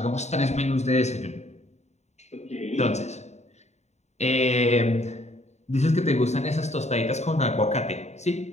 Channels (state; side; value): late; right; 0.32 ms